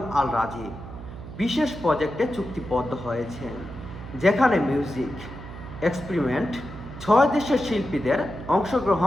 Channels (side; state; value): right; noise; hum, 12 dB below the sound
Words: আল রাজীব বিশেষ প্রজেক্টে চুক্তিবদ্ধ হয়েছেন, যেখানে মিউজিক এক্সপেরিমেন্ট 6 দেশের শিল্পীদের